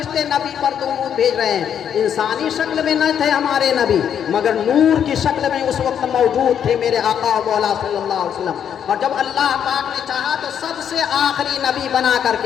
نبی پر درود بھیج رہے ہیں۔ انسانی شکل میں نہ تھے ہمارے نبی، مگر نور کی شکل میں اس وقت موجود تھے میرے آقا و مولا صلی اللہ علیہ وسلم، اور جب اللہ پاک نے چاہا تو سب سے آخری نبی بنا کر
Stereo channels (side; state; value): right; quieter; 8.7 dB